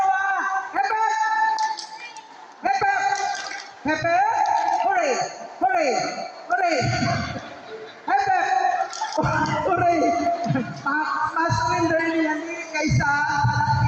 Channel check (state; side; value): identical; both; correlation 1.00